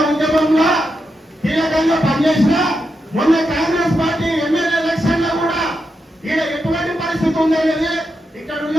ఉద్యమంలో కీలకంగా పనిచేసిన మొన్న కాంగ్రెస్ పార్టీ ఎమ్మెల్యే ఎలక్షన్ లో కూడా ఈడ ఎటువంటి పరిస్థితి ఉందనేది ఇక్కడ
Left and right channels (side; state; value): both; normal; correlation 0.86